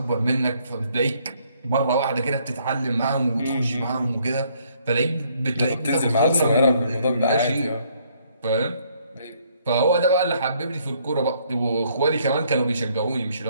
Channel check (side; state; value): both; inverted; correlation -0.67